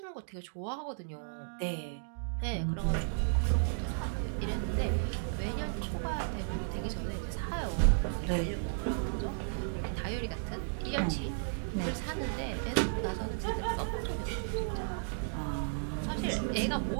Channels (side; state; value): left; silent; digital silence